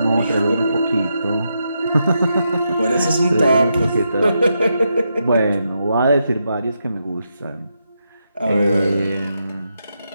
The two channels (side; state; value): both; inverted; correlation -0.83